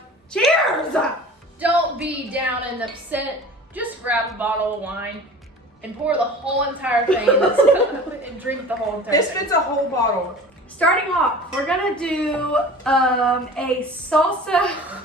Cheers! don't be down and upset. Just grab a bottle of wine and pour the whole entire thing in this cup and drink the whole entire This thing. fits a whole bottle. Starting off, we're gonna do a salsa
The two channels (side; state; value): both; normal; correlation 0.41